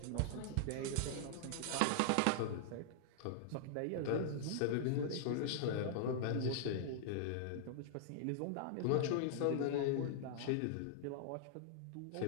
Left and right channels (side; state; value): both; different; correlation -0.01